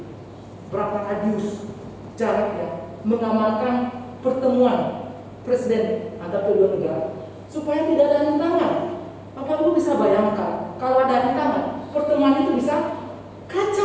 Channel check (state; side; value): identical; both; correlation 1.00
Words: Berapa radius jaraknya mengamankan pertemuan presiden antar kedua negara supaya tidak ada rintangan. Bapak Ibu bisa bayangkan kalau ada rintangan, pertemuan itu bisa